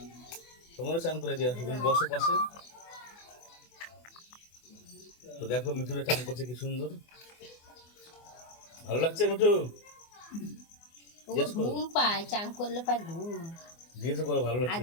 তোমারও চান করে দেওয়া, তুমি বসো পাশে। তো দেখো মিঠুরা চান করছে কি সুন্দর, ভালো লাগছে মিঠু? ও জিজ্ঞেস করো, ঘুম পায়, চান করলে পায় ঘুম। জিজ্ঞেস করো ভালো লাগছে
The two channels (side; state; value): right; late; 24 ms